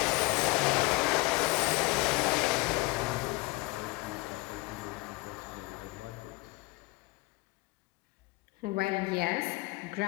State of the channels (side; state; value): right; quieter; 23.9 dB